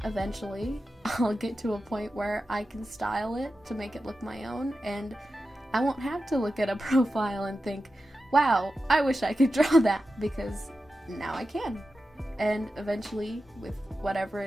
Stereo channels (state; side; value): normal; both; correlation 0.92